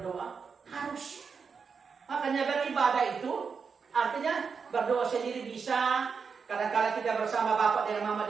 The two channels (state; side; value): quieter; left; 5.7 dB